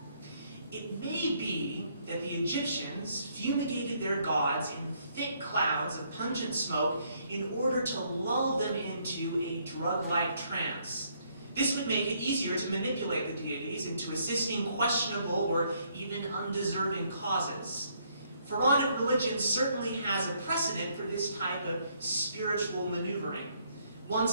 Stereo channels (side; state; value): both; inverted; correlation -0.69